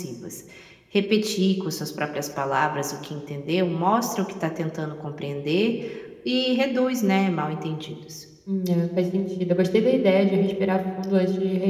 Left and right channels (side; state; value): both; identical; correlation 1.00